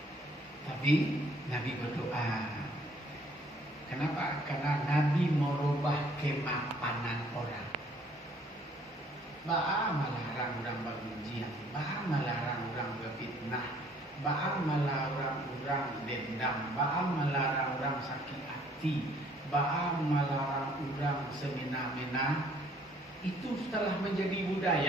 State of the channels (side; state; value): both; normal; correlation 0.61